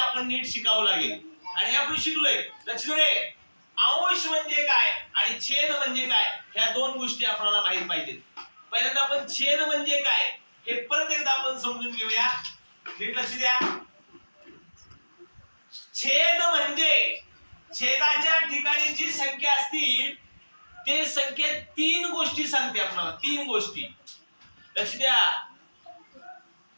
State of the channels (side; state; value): both; inverted; correlation -1.00